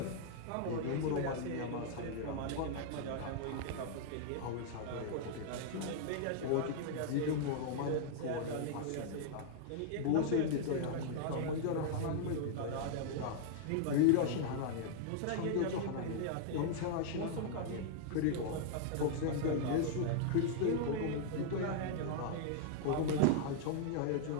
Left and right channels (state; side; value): different; both; correlation -0.01